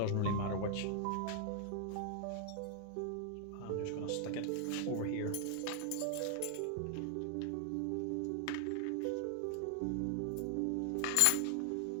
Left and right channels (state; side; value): different; both; correlation 0.00